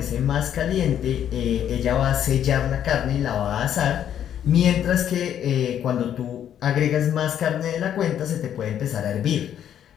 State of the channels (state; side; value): quieter; right; 9.9 dB